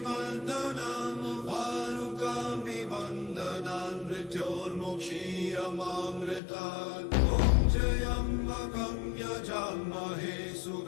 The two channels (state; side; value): drops out; right; at 6.4 s